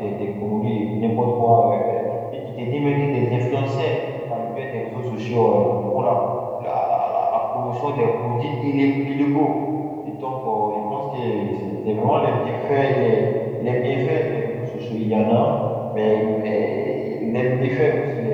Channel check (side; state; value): both; identical; correlation 1.00